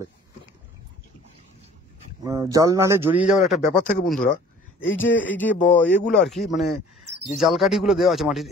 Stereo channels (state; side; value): normal; both; correlation 0.50